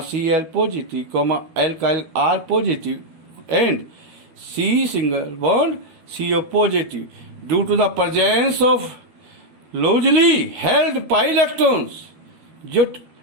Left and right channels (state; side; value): late; left; 12 ms